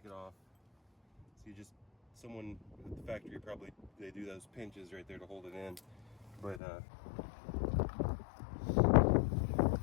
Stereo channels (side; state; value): right; drops out; at 6.6 s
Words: it off. So you just, someone at the factory probably, they do those pinches right there to hold it in. But so